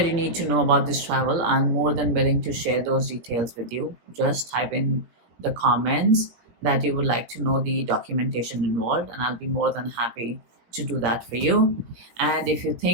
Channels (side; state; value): left; late; 17 ms